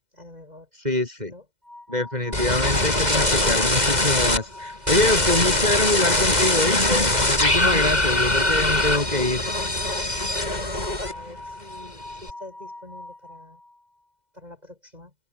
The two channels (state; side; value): late; left; 2.0 ms